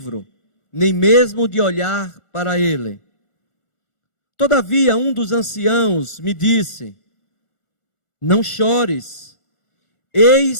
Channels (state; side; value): late; right; 1.4 ms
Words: nem mesmo de olhar para ele. Todavia, um dos anciãos me disse: Não chores,